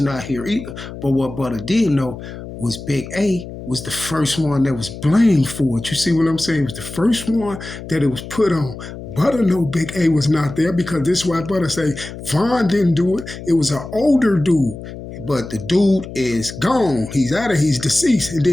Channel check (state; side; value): noise; left; hum, 12 dB below the sound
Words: not here either. But what Butta did know was Big A was the first one that was blamed for it. You see what I'm saying? It was the first one that it was put on. Butta know Big A was not there because this is why Butta say Von didn't do it. It was an older dude. But the dude is gone. He's deceased. And